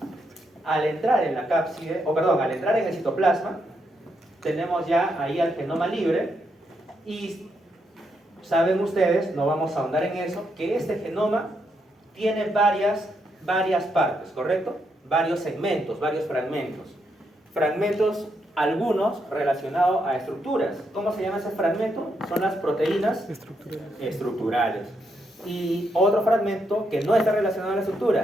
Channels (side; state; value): both; normal; correlation 0.79